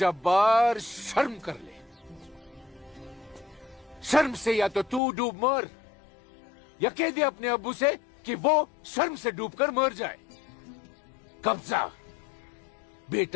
शर्म कर ले। शर्म से या तो तू डूब मर, या कह दे अपने अब्बू से कि वो शर्म से डूबकर मर जाए। कब्जा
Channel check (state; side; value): drops out; right; at 5.0 s